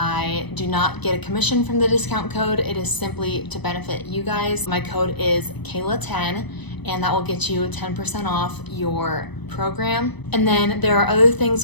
do not get a commission from the discount code. It is simply to benefit you guys. My code is Kayla10, and that will get you 10% off your program. And then there are other things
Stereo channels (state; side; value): late; right; 1.0 ms